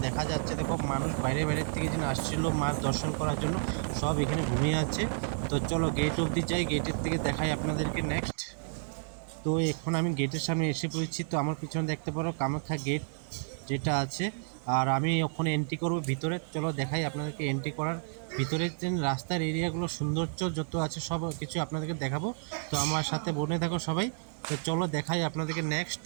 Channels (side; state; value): left; silent; digital silence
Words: দেখা যাচ্ছে, দেখো মানুষ বাইরে বাইরের থেকে যেন আসছিল মার দর্শন করার জন্য, সব এখানে ঘুমিয়ে আছে। তো চলো গেট অবধি যাই, গেটের থেকে দেখাই আপনাদেরকে নেক্সট। তো এখন আমি গেটের সামনে এসে পড়েছি। তো আমার পিছনে দেখতে পারো কামাখ্যা গেট যেটা আছে, আর আমি ওখানে এন্ট্রি করব ভিতরে। চলো দেখাই আপনাদেরকে এন্ট্রি করার ভিতরে যে রাস্তার এরিয়াগুলো সৌন্দর্য যত আছে সব কিছু আপনাদেরকে দেখাবো। তো আমার সাথে বনে থাকো সবাই। তো চলো দেখাই আপনাদেরকে নেক্সট।